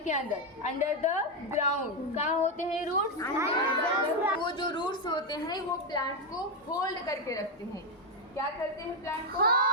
के अंदर, अंडर द ग्राउंड। कहाँ होते हैं रूट्स? वो जो रूट्स होते हैं वो प्लांट को होल्ड करके रखते हैं। क्या करते हैं? प्लांट को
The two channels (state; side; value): normal; both; correlation 0.05